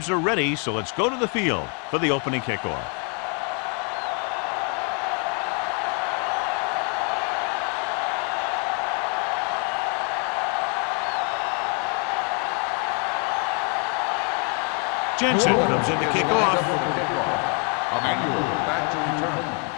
are ready, so let's go to the field for the opening kickoff. Jensen comes in to kick off. Back to return.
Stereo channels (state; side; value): quieter; right; 37.7 dB